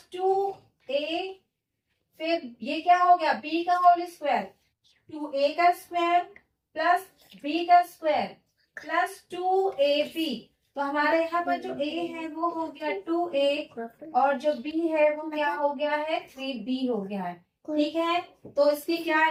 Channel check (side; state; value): both; identical; correlation 1.00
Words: 2a, फिर ये क्या हो गया, b का होल स्क्वायर, 2a का स्क्वायर प्लस b का स्क्वायर प्लस 2ab। तो हमारे यहाँ पर जो a है वो हो गया 2a, और जो b है वो क्या हो गया है, 3b हो गया है। ठीक है, तो इसकी क्या